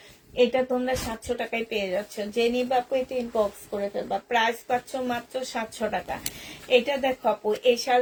এটা তোমরা 700 টাকায় পেয়ে যাচ্ছ, যে নিবা আপু এটা ইনবক্স করে ফেলবা। প্রাইস পাচ্ছ মাত্র 700 টাকা। এটা দেখো আপু, এই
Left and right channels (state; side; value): identical; both; correlation 1.00